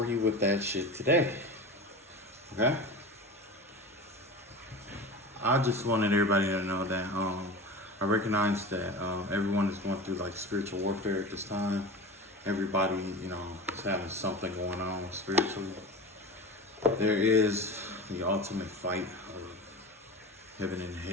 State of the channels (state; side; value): normal; both; correlation 0.30